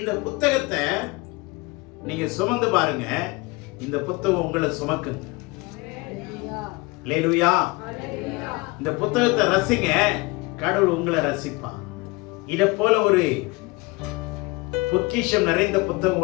புத்தகத்தை நீங்க சுமந்து பாருங்க. இந்த புத்தகம் உங்களை சுமக்குங்க. அல்லேலூயா. இந்த புத்தகத்தை ரசிங்க, கடவுள் உங்களை ரசிப்பார். இதை போல ஒரு பொக்கிஷம் நிறைந்த புத்தகம்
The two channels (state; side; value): quieter; right; 24.5 dB